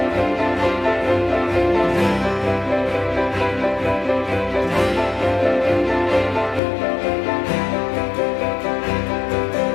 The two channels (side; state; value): right; drops out; at 6.6 s